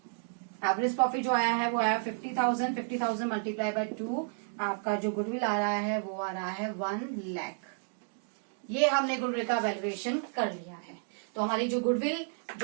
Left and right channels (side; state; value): left; silent; digital silence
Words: Average profit जो आया है वो आया 50,000। 50,000 मल्टीप्लाई बाय 2, आपका जो गुडविल आ रहा है वो आ रहा है 1 लाख। ये हमने गुडविल का वैल्यूएशन कर लिया है। तो हमारी जो गुडविल